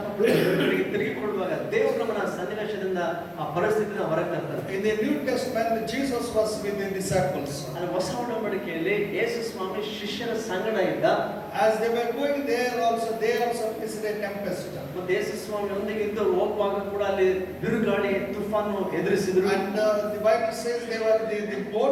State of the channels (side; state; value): both; identical; correlation 1.00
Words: ತಿರುಗಿಕೊಳ್ಳುವಾಗ ದೇವರು ನಮ್ಮನ್ನ ಸನ್ನಿವೇಶದಿಂದ ಆ ಪರಿಸ್ಥಿತಿಯಿಂದ ಹೊರಗೆ ತರ್ತಾರೆ. In the New Testament, Jesus was with the disciples. ಅಂದ್ರೆ ಹೊಸ ಒಡಂಬಡಿಕೆಯಲ್ಲಿ ಯೇಸು ಸ್ವಾಮಿ ಶಿಷ್ಯರ ಸಂಗಡ ಇದ್ದ. As they were going there also, they also faced a tempest. ಮತ್ತೆ ಯೇಸು ಸ್ವಾಮಿ ಒಂದಿಗೆ ಇದ್ದು ಹೋಗುವಾಗ ಕೂಡ ಅಲ್ಲಿ ಬಿರುಗಾಳಿ ತುಫಾನು ಎದುರಿಸಿದ್ರು. And the Bible says the